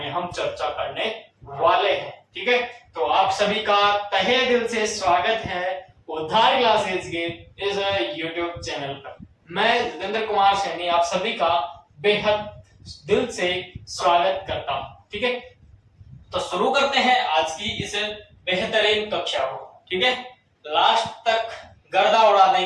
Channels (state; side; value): identical; both; correlation 1.00